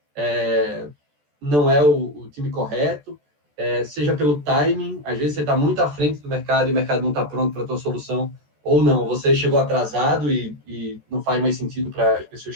não é o time correto, seja pelo timing, às vezes você está muito à frente do mercado e o mercado não está pronto para a tua solução, ou não, você chegou atrasado e não faz mais sentido para as pessoas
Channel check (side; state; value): left; late; 14 ms